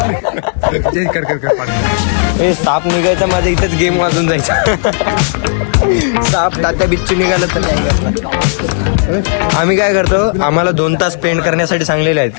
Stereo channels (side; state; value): right; silent; digital silence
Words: हे साप निघायचा माझ्या इथेच गेम वाजून जायचा। साप तात्या बिच्ची निघालं तर नाही। आम्ही काय करतो, आम्हाला 2 तास स्पेंड करण्यासाठी सांगलेले